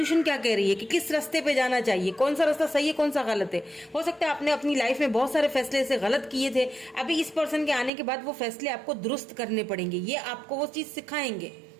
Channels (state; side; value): drops out; left; at 7.9 s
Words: क्या कह रही है, कि किस रास्ते पे जाना चाहिए, कौन सा रास्ता सही है, कौन सा गलत है। हो सकता है आपने अपनी लाइफ में बहुत सारे फैसले ऐसे गलत किए थे, अभी इस पर्सन के आने के बाद वो फैसले आपको दुरुस्त करने पड़ेंगे, ये आपको वो चीज सिखाएंगे।